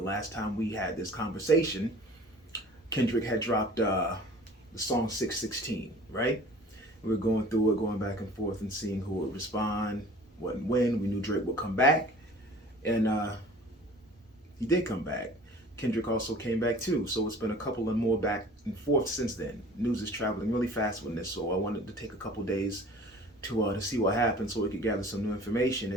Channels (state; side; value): normal; both; correlation 0.46